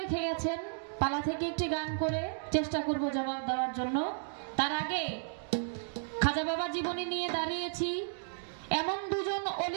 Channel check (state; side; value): silent; left; digital silence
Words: গেছেন, পালা থেকে একটি গান করে চেষ্টা করব জবাব দেওয়ার জন্য। তার আগে খাজা বাবা জীবনী নিয়ে দাঁড়িয়েছি। এমন দুজন